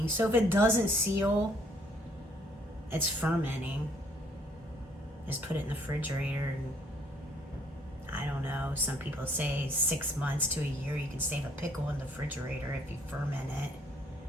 So if it doesn't seal, it's fermenting. Just put it in the refrigerator, and I don't know. Some people say 6 months to a year you can save a pickle in the refrigerator if you ferment it.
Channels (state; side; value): normal; both; correlation 0.64